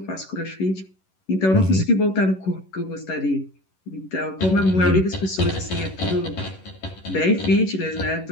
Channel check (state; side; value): late; right; 11 ms